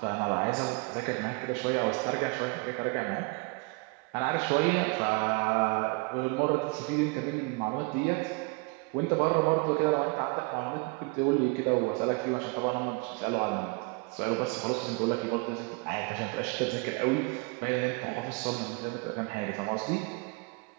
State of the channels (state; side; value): quieter; left; 30.2 dB